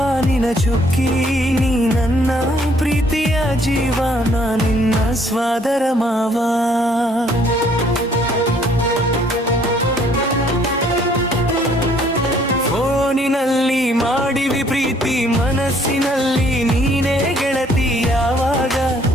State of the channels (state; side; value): normal; both; correlation 0.63